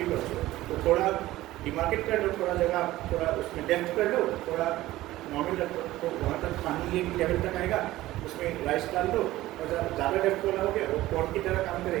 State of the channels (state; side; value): quieter; left; 16.4 dB